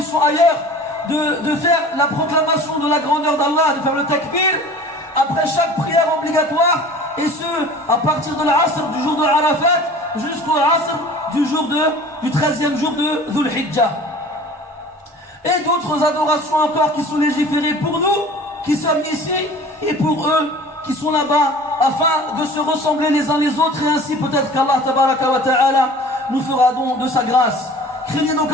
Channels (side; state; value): both; normal; correlation 0.43